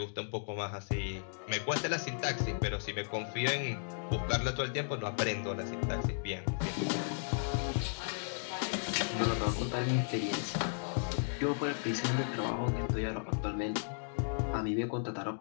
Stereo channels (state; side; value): silent; right; digital silence